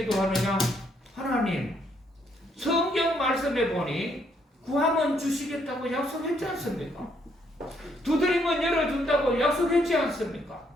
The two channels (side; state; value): both; normal; correlation 0.71